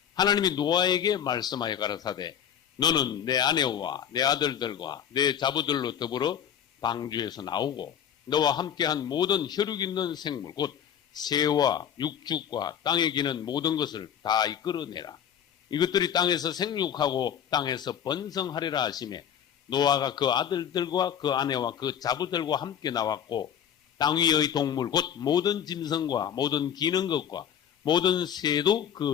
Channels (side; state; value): right; quieter; 9.1 dB